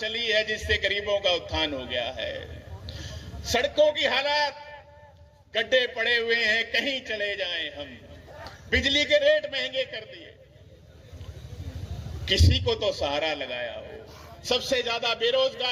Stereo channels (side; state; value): both; identical; correlation 1.00